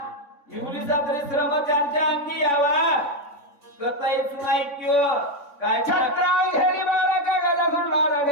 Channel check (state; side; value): late; right; 3.5 ms